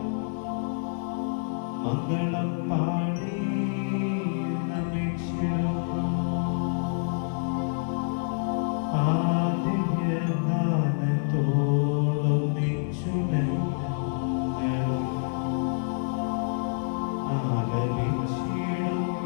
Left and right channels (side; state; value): right; silent; 60 dB below the other